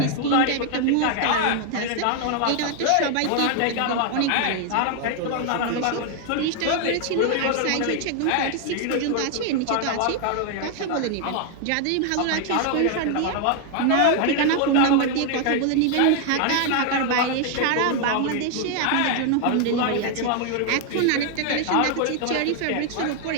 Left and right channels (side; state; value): both; different; correlation 0.00